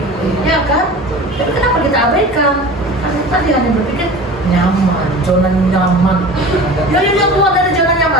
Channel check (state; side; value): normal; both; correlation 0.37